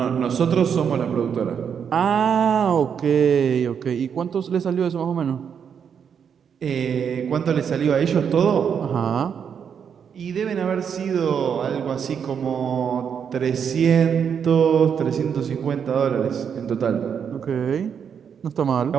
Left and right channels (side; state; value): left; quieter; 7.4 dB